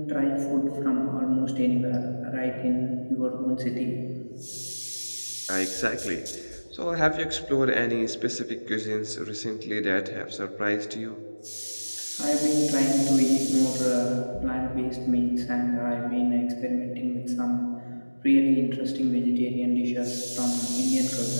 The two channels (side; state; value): both; inverted; correlation -1.00